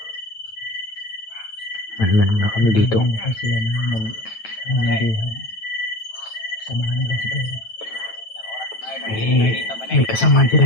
Manman muna kami dito. Hinihintay sila na manandihan. Samahan nila si Pero. May kasamaan sila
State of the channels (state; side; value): late; right; 9.1 ms